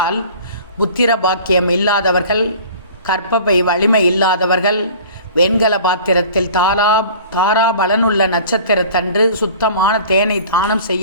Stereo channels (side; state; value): both; inverted; correlation -0.45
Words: புத்திர பாக்கியம் இல்லாதவர்கள், கற்பப்பை வலிமை இல்லாதவர்கள் வெண்கல பாத்திரத்தில் தாரா பலனுள்ள நட்சத்திரத்தன்று சுத்தமான தேனை தானம்